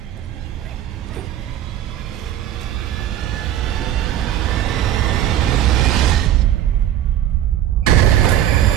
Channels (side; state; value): left; quieter; 11.7 dB